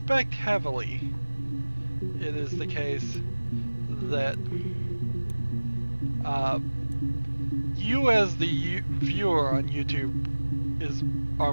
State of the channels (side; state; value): both; inverted; correlation -1.00